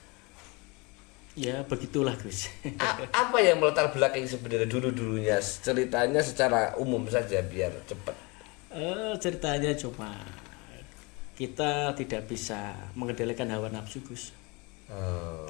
Ya, begitulah, Gus. Apa yang melatar belakang sebenarnya dulunya? Ceritanya secara umum saja biar cepat. Ceritanya cuma kita tidak bisa mengendalikan hawa nafsu, Gus.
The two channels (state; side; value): quieter; right; 27.8 dB